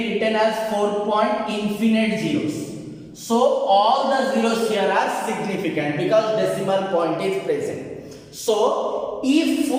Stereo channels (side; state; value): both; identical; correlation 1.00